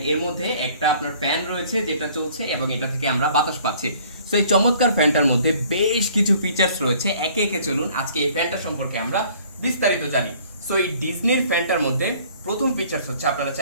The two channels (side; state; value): both; inverted; correlation -0.55